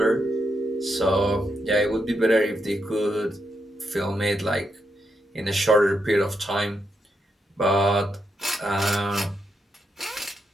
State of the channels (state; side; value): normal; both; correlation 0.82